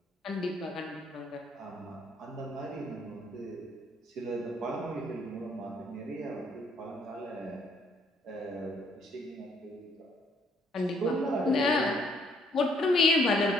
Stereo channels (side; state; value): both; normal; correlation 0.66